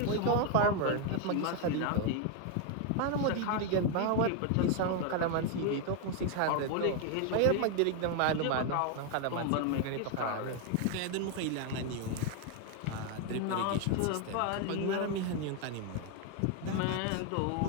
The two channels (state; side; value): different; both; correlation 0.01